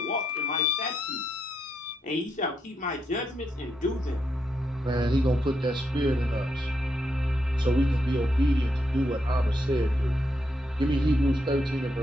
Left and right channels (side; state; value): both; normal; correlation 0.80